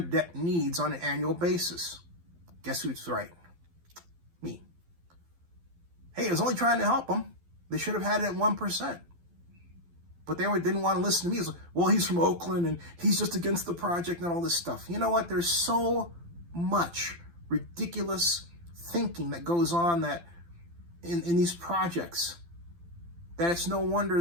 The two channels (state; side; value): late; left; 12 ms